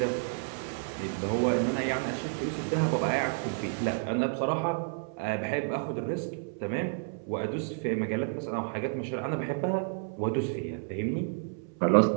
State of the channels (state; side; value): silent; left; 57 dB below the other